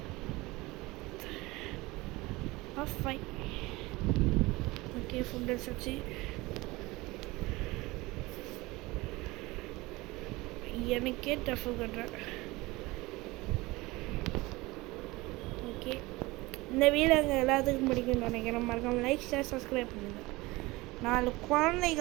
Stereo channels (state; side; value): quieter; left; 21.5 dB